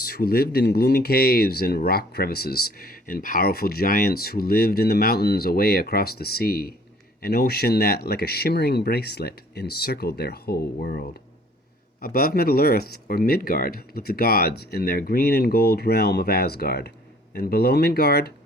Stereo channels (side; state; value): both; normal; correlation 0.56